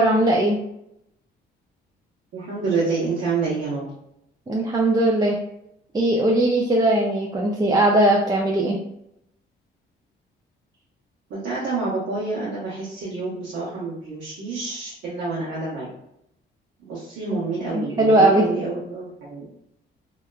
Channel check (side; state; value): both; normal; correlation 0.48